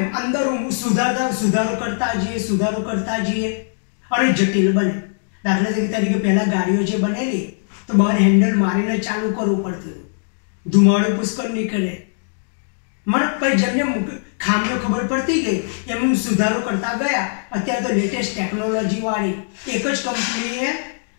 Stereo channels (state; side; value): silent; right; digital silence